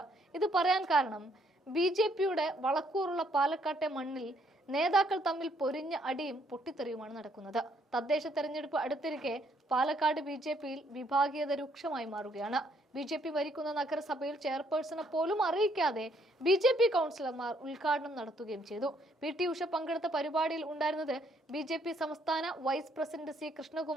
ഇത് പറയാൻ കാരണം BJP-യുടെ വളക്കൂറുള്ള പാലക്കാട്ടെ മണ്ണിൽ നേതാക്കൾ തമ്മിൽ പൊരിഞ്ഞ അടിയും പൊട്ടിത്തെറിയുമാണ് നടക്കുന്നത്. തദ്ദേശ തെരഞ്ഞെടുപ്പ് അടുത്തിരിക്കെ പാലക്കാട് BJP-യിൽ വിഭാഗീയത രൂക്ഷമായി മാറുകയാണ്. BJP ഭരിക്കുന്ന നഗരസഭയിൽ ചെയർപേഴ്സണെ പോലും അറിയിക്കാതെ BJP കൗൺസിലർമാർ ഉദ്ഘാടനം നടത്തുകയും ചെയ്തു. PT ഉഷ പങ്കെടുത്ത പരിപാടിയിൽ ഉണ്ടായിരുന്നത് BJP സംസ്ഥാന വൈസ് പ്രസിഡന്റ് C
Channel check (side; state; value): both; normal; correlation 0.68